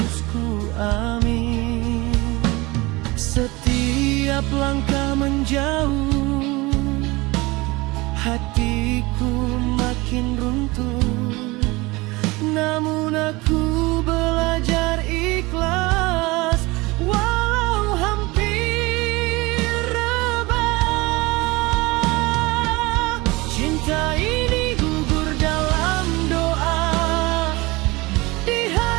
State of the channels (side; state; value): left; quieter; 22.9 dB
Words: ku amin. Setiap langkah menjauh, hatiku makin runtuh. Namun aku belajar ikhlas, walau hampir rebah. Cinta ini gugur dalam doa, di